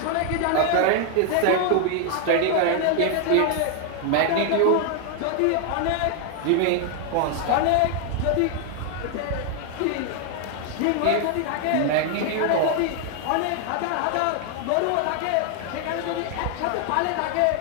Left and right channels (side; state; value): both; different; correlation 0.00